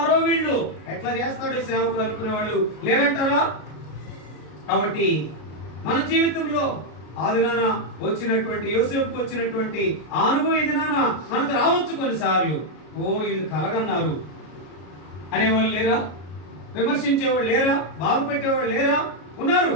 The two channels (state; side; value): late; right; 33 ms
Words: వీళ్ళు, ఎట్లా చేస్తాడో సేవకులు అనుకునే వాళ్ళు లేరంటారా? కాబట్టి మన జీవితంలో ఆ దినాన వచ్చినటువంటి యోసేపుకు వచ్చినటువంటి అనుభవం ఈ దినాన మనకు రావచ్చు. కొన్నిసార్లు వీళ్ళు కలగన్నారు అనేవాళ్ళు లేరా? విమర్శించేవాళ్ళు లేరా? బాధ పెట్టేవాళ్ళు లేరా? ఉన్నారు.